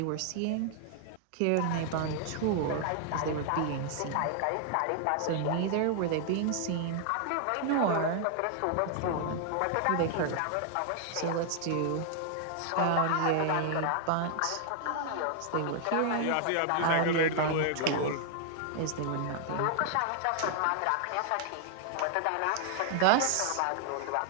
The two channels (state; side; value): different; both; correlation 0.00